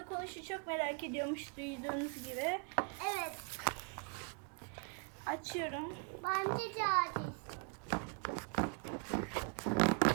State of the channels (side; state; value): left; quieter; 38.1 dB